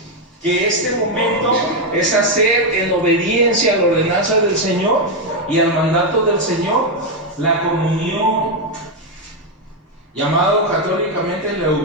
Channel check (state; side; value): normal; both; correlation 0.04